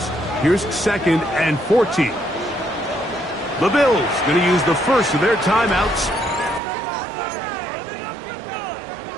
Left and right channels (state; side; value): drops out; left; at 6.6 s